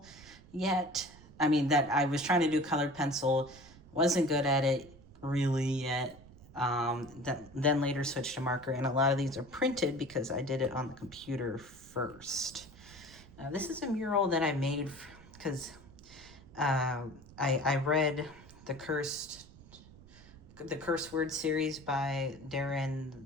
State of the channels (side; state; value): right; noise; rumble, 21 dB below the sound